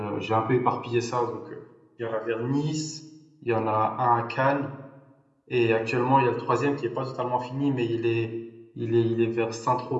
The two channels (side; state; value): both; identical; correlation 1.00